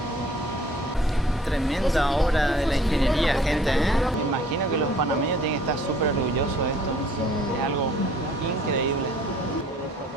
Tremenda obra de la ingeniería, gente, ¿eh? Me imagino que los panameños tienen que estar súper orgullosos de esto. Es algo increíble.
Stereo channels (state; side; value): normal; both; correlation 0.56